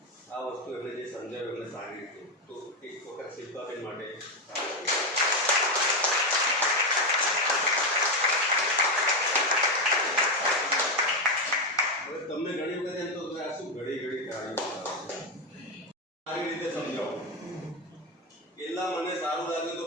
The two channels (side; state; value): both; normal; correlation 0.09